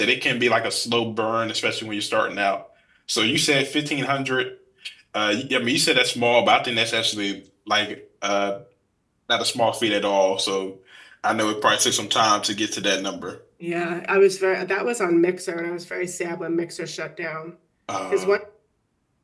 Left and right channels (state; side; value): identical; both; correlation 1.00